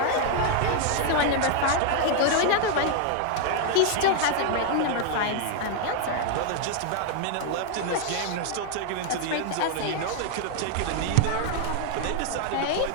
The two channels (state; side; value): different; both; correlation 0.00